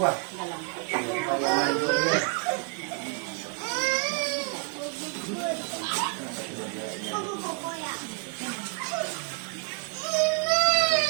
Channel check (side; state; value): left; quieter; 35.6 dB